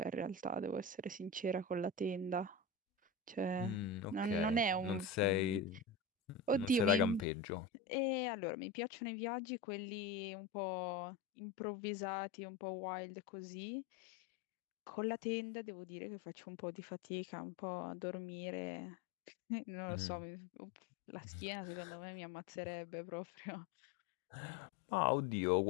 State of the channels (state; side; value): drops out; right; at 7.2 s